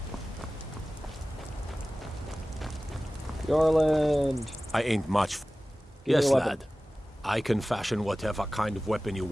Yorland. I ain't much. Give me Yes, a weapon. lad. I can fashion whatever kind of weapon you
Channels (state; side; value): normal; both; correlation 0.97